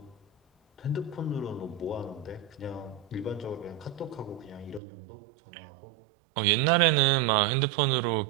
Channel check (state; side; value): drops out; left; at 4.8 s